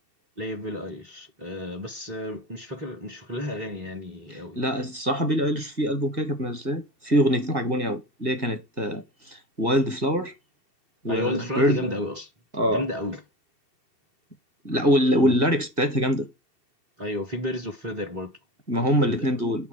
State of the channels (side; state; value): left; late; 2.7 ms